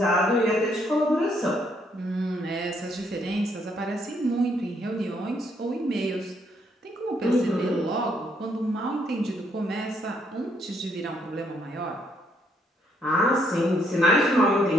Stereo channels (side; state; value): both; normal; correlation 0.71